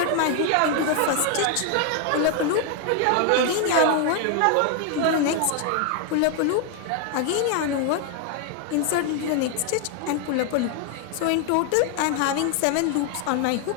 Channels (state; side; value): different; both; correlation 0.01